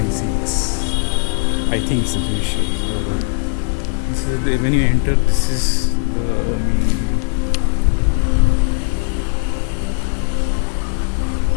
I think it's a Jewish year. This is when you enter. This is the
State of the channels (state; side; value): silent; right; 67 dB below the other